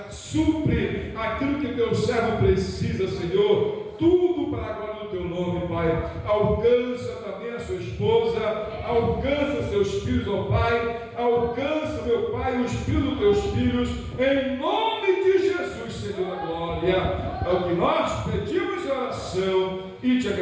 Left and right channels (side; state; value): both; identical; correlation 1.00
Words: Supre aquilo que teu servo precisa, Senhor. Tudo para a glória do teu nome, Pai. Alcança também a sua esposa, alcança seus filhos, ó Pai. Alcança, meu Pai, os filhos dos teus filhos, em nome de Jesus, Senhor da glória. É o que nós pedimos em oração e te